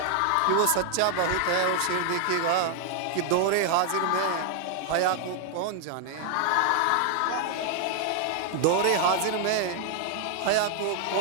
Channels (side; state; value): both; different; correlation 0.00